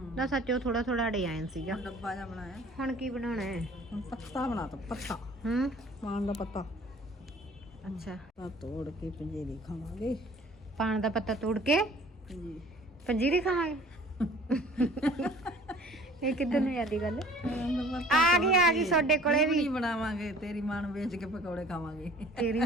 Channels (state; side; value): normal; both; correlation 0.50